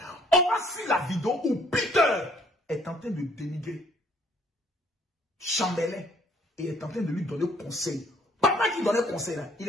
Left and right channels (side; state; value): both; normal; correlation 0.62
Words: On va suivre la vidéo où Peter est en train de dénigrer Chambellan et est en train de lui donner conseil. Papa qui donnait conseil là, il